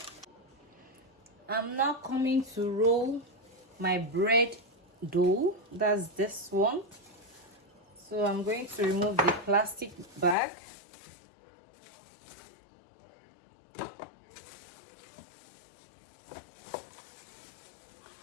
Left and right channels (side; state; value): right; drops out; at 10.4 s